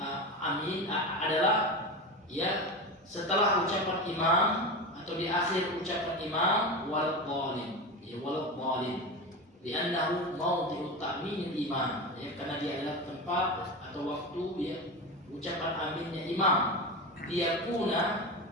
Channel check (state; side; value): normal; both; correlation 0.23